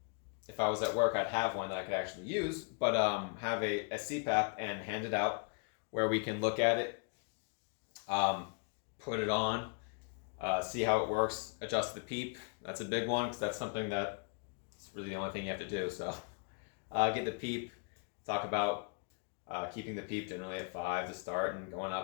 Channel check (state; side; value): quieter; right; 37.6 dB